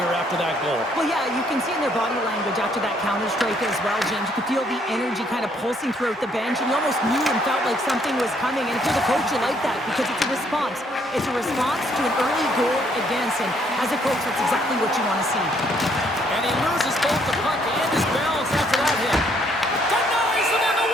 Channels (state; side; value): normal; both; correlation 0.68